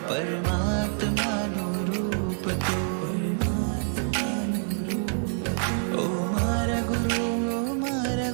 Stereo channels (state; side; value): silent; left; digital silence